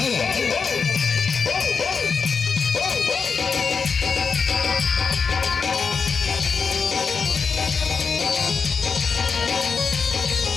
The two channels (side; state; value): right; quieter; 5.4 dB